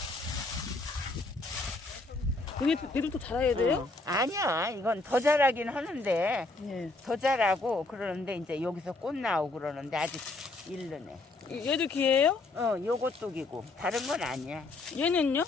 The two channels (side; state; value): right; quieter; 3.1 dB